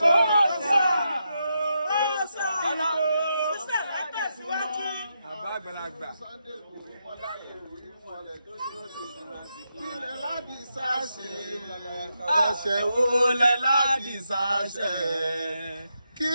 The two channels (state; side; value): inverted; both; correlation -0.84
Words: àgbàlagbà. Kílẹ̀ láti sáṣe, ẹ̀ṣẹ̀ wo lẹ láti sáṣe?